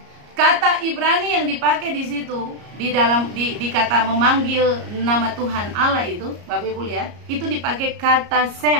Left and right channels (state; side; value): late; left; 34 ms